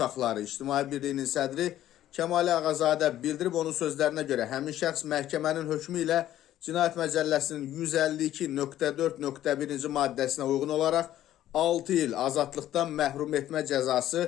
İctimai Birliyinin sədri Kəmal Ağazadə bildirib. Onun sözlərinə görə həmin şəxs məhkəmənin hökmü ilə Cinayət Məcəlləsinin 152.4.1-ci maddəsinə uyğun olaraq 6 il azadlıqdan məhrum etmə cəzası,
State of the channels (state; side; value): quieter; right; 12.7 dB